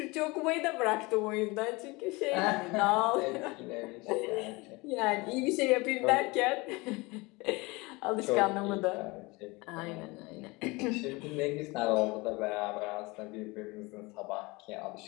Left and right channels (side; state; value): right; quieter; 24.4 dB